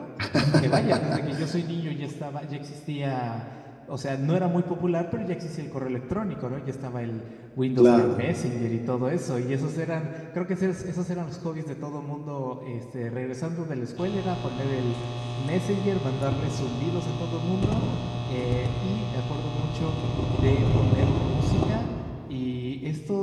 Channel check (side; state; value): both; identical; correlation 1.00